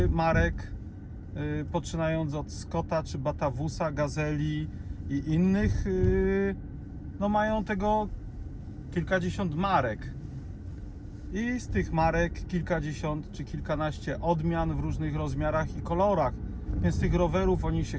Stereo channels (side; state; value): both; identical; correlation 1.00